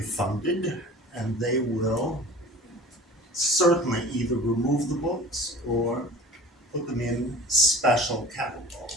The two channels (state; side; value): normal; both; correlation 0.42